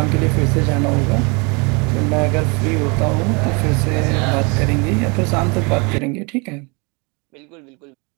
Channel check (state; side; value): quieter; left; 30.8 dB